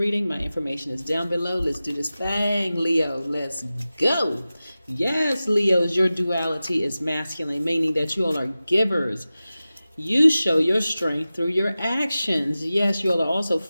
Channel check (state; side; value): inverted; both; correlation -0.95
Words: my information is down below. Let's do this thing, Leo. Let's go. Yes, Leos, your duality is masculine, meaning that you all are givers. You show your strength through your actions. Yes, you all are also